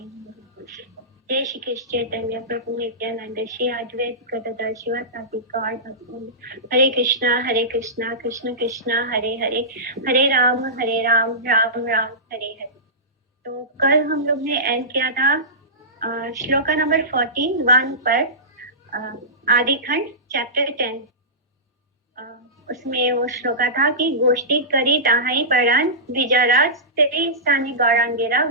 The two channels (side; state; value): both; normal; correlation -0.18